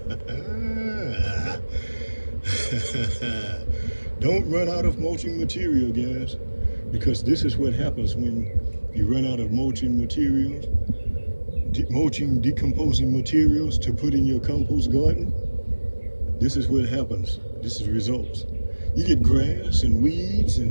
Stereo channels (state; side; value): inverted; both; correlation -1.00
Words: Don't run out of mulching material, guys, because this is what happens when you run out of mulching materials, decomposing materials to put in your compost garden. This is what happens. This is results. You get grass and weeds